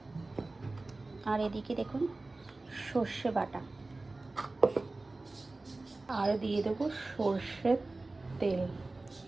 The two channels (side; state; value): left; quieter; 3.2 dB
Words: আর এদিকে দেখুন সর্ষে বাটা, আর দিয়ে দেবো সর্ষের তেল।